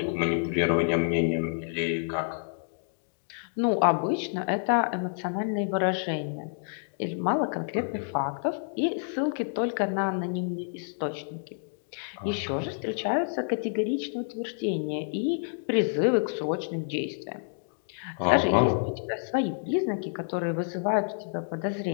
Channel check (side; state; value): right; silent; digital silence